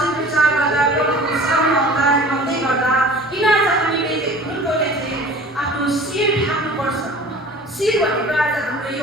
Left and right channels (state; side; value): normal; both; correlation 0.44